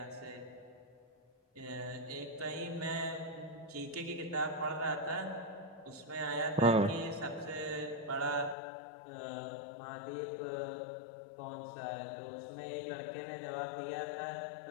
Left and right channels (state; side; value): drops out; right; at 8.6 s